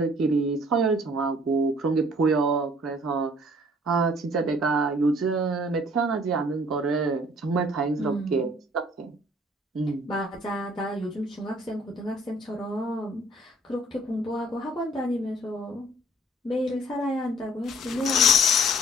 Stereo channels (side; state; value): both; normal; correlation 0.57